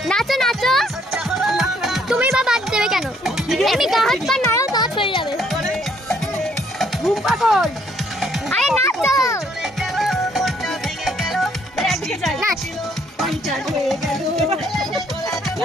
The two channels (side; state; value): both; normal; correlation 0.66